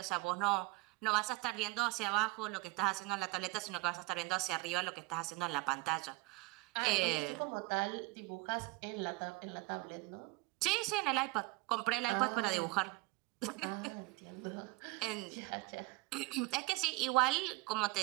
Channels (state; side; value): quieter; left; 23.8 dB